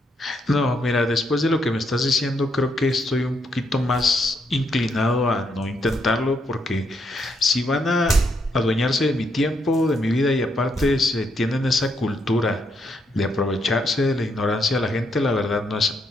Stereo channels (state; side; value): normal; both; correlation 0.76